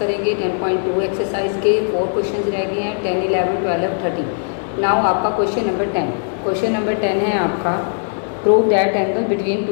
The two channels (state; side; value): silent; right; 66 dB below the other